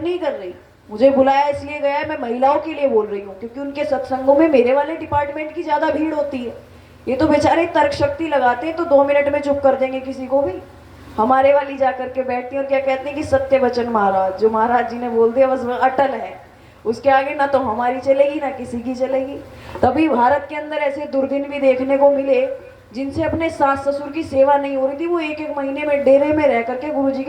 नहीं कर रही, मुझे बुलाया इसलिए गया है, मैं महिलाओं के लिए बोल रही हूँ, क्योंकि उनके सत्संगों में मेरे वाले डिपार्टमेंट की ज्यादा भीड़ होती है। ये तो बेचारे तर्क शक्ति लगाते हैं तो 2 मिनट में चुप कर देंगे किसी को भी। हमारे वाली जाकर के बैठती है और क्या कहते हैं कि सत्य वचन महाराज, जो महाराज जी ने बोल दिया बस अटल है, उसके आगे ना तो हमारी चलेगी ना किसी की चलेगी। तभी भारत के अंदर ऐसे दुर्दिन भी देखने को मिले जिनसे अपने सास ससुर की सेवा नहीं हो रही थी, वो एक एक महीने में डेरे में रह करके गुरु जी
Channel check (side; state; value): both; identical; correlation 1.00